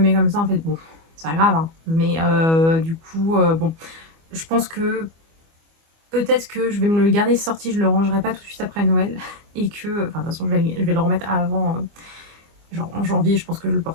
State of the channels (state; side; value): late; left; 25 ms